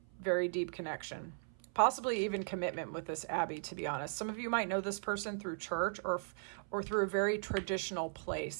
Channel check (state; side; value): silent; left; 53 dB below the other